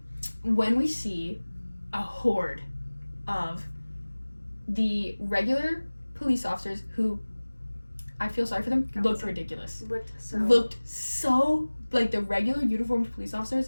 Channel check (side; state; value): both; inverted; correlation -1.00